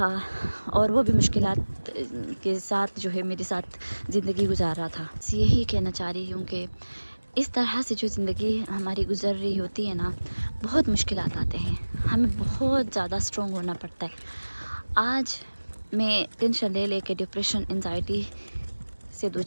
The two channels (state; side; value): inverted; both; correlation -1.00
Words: اور وہ بھی مشکلات کے ساتھ جو ہے میرے ساتھ زندگی گزار رہا تھا. یہی کہنا چاہ رہی ہوں کہ اس طرح سے جو زندگی ہماری گزر رہی ہوتی ہے نا، بہت مشکلات آتے ہیں، ہمیں بہت زیادہ اسٹرانگ ہونا پڑتا ہے. آج میں ٹینشن لے کے ڈپریشن انزائٹی سے